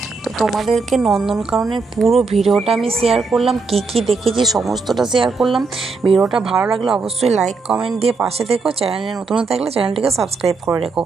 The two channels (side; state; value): left; quieter; 4.3 dB